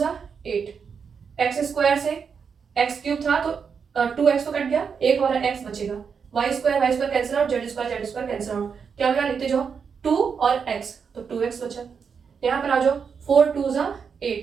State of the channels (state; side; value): quieter; left; 6.3 dB